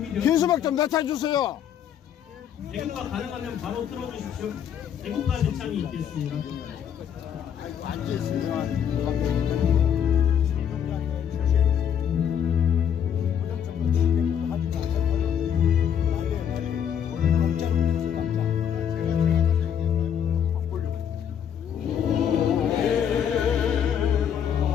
현수막 좀 낮춰주세요. 애국가 가능하면 바로 틀어주십시오. 애국가 대창이 있겠습니다.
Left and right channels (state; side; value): quieter; right; 8.7 dB